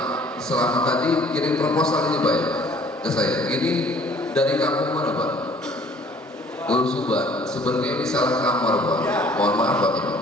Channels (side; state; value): both; normal; correlation 0.55